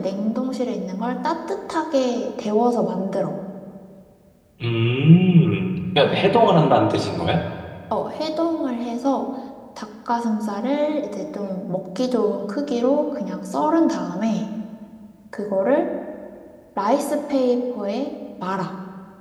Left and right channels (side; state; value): both; identical; correlation 1.00